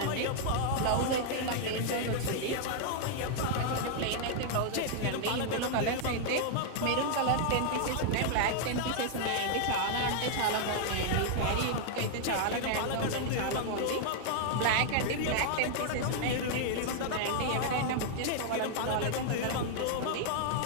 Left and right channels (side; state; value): both; different; correlation 0.00